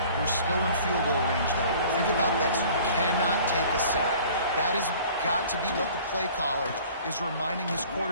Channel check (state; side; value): inverted; both; correlation -0.49